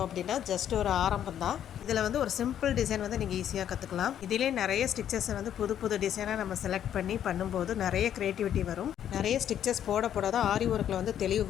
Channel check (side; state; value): right; quieter; 10.1 dB